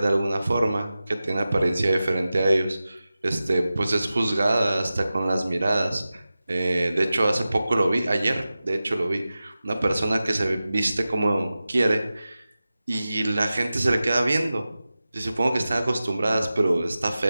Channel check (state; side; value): inverted; both; correlation -0.95